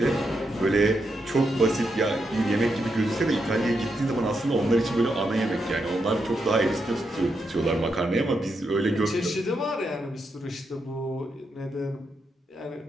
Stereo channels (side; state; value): both; normal; correlation 0.83